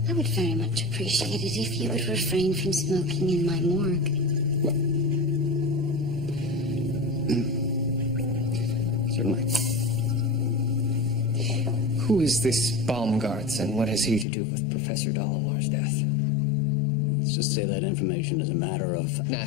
I would very much appreciate it if you would refrain from smoking in my morgue. Certainly. Who is this Baumgartz, and what has he to do with Professor Dolomore's death? Let's just say that information is a matter of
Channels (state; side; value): drops out; right; at 14.2 s